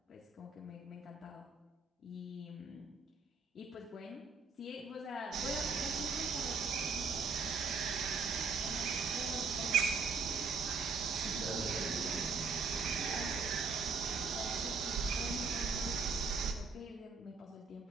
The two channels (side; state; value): left; quieter; 4.7 dB